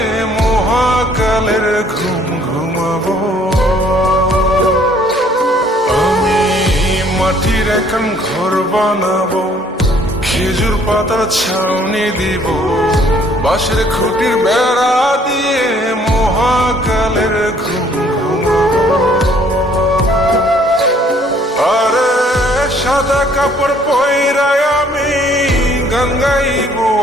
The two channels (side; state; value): both; normal; correlation 0.61